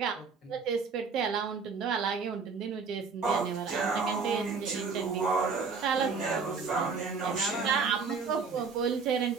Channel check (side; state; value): left; quieter; 5.1 dB